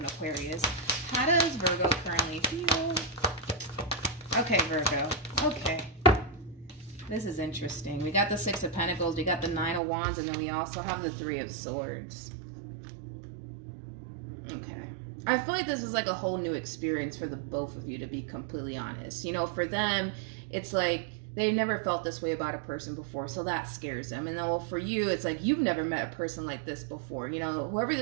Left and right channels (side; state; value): left; drops out; at 9.8 s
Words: Aquarius. How does Virgo currently feel? Okay, Virgo. Okay. This is interesting. We got the Six of Pentacles, we got the Nine of Wands, and then we also have the Three of Swords. Okay. I feel like this is like a whole new experience for the both of you, to be completely honest. You know, for them, it's like they've never felt this way about a person before, so that scares them. And then, well, for you, it's like you've never met a person like this before. You know, whoever